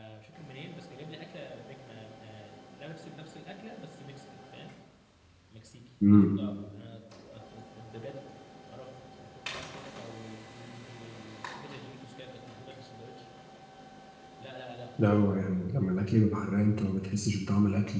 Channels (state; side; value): identical; both; correlation 1.00